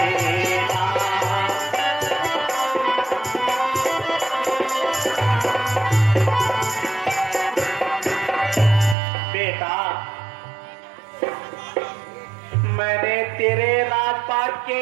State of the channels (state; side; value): drops out; left; at 9.0 s